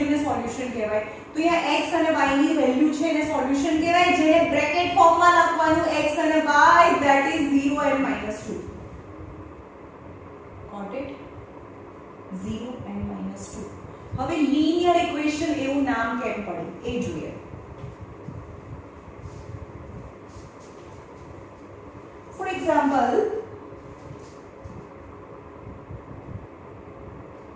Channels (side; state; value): both; identical; correlation 1.00